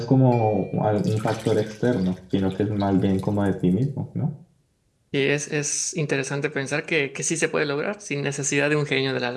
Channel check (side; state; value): both; identical; correlation 1.00